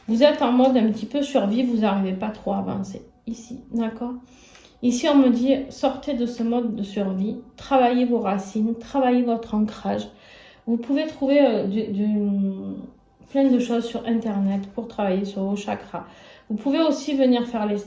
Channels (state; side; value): identical; both; correlation 1.00